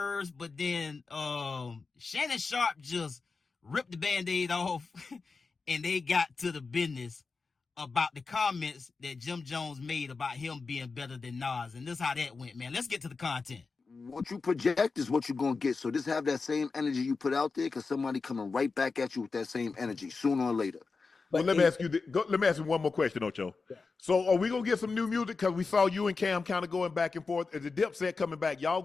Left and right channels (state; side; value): quieter; right; 4.4 dB